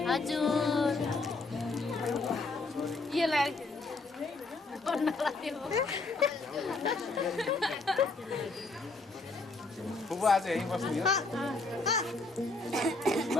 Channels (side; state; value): right; quieter; 3.4 dB